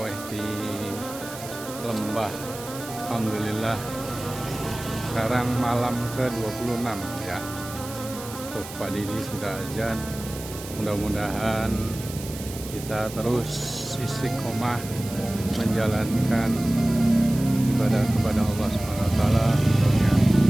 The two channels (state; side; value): noise; right; hiss, 13 dB below the sound